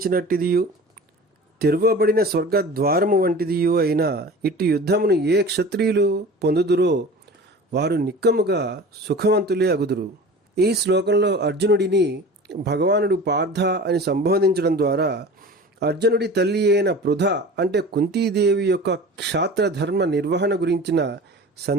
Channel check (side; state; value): both; normal; correlation 0.38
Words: తెరవబడిన స్వర్గద్వారము వంటిదియు అయిన ఇట్టి యుద్ధమును ఏ క్షత్రియులు పొందుదురో వారు నిక్కముగా సుఖవంతులే అగుదురు. ఈ శ్లోకంలో అర్జునుడిని భగవానుడు పార్థ అని సంబోధించడం ద్వారా అర్జునుడి తల్లి అయిన పృథ అంటే కుంతీదేవి యొక్క క్షాత్రధర్మ నిర్వహణ గురించిన